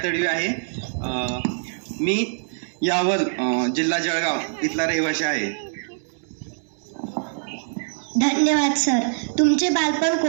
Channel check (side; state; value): left; silent; digital silence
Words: तडवी आहे. मी यावल जिल्हा जळगाव इथला रहिवासी आहे. धन्यवाद सर. तुमचे बालपण